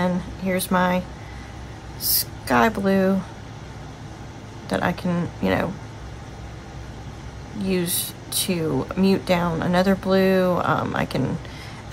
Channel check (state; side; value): identical; both; correlation 1.00